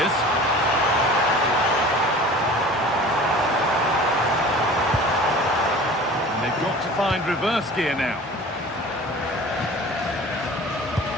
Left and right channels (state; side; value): normal; both; correlation 0.42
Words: And they've got to find reverse gear now.